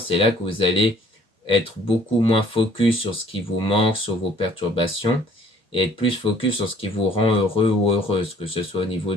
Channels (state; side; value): normal; both; correlation 0.57